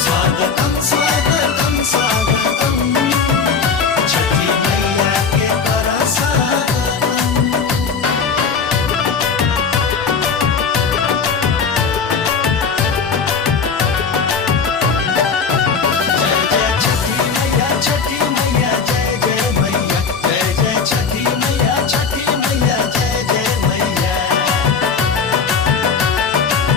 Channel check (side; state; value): right; quieter; 5.6 dB